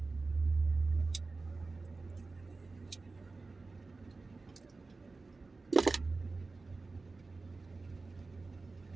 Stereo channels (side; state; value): left; quieter; 3.7 dB